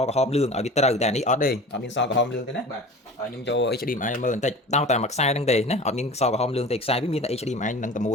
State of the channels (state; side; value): normal; both; correlation 0.38